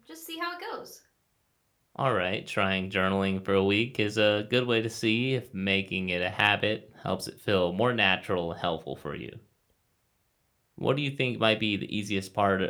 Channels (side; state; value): both; identical; correlation 1.00